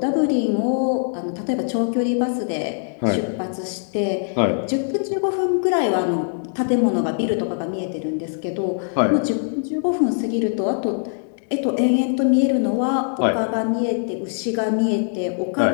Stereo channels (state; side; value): silent; right; digital silence